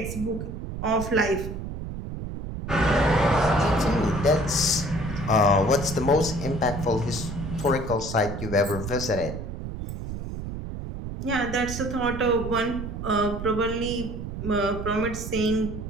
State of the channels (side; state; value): right; noise; rumble, 7 dB below the sound